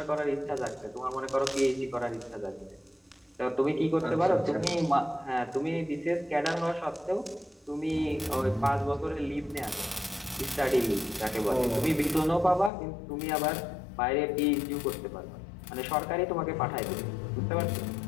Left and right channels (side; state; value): right; drops out; at 12.7 s